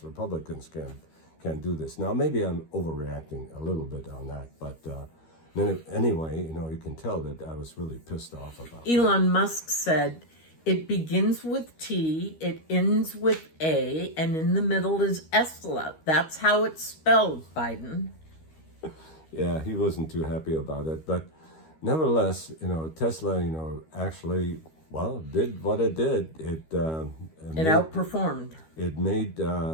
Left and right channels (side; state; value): right; late; 13 ms